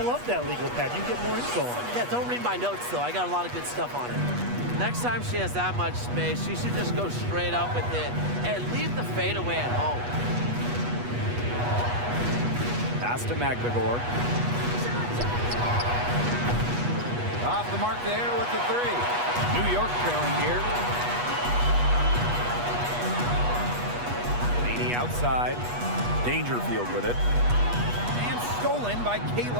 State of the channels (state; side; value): late; left; 8.3 ms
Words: love that legal pad. You can get more info on it. Yeah, don't read my notes, though. I got a lot of good stuff on it. Next time she has that much space, she should just go straight up with it and leave the fadeaway at home. Pass to Magbegor. Off the mark there with the 3. New York trailing here. Laney outside. Dangerfield with it. And stolen by